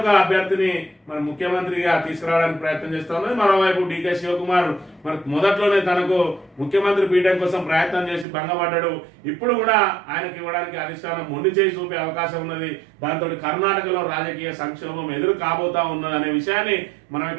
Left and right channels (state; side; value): drops out; left; at 8.2 s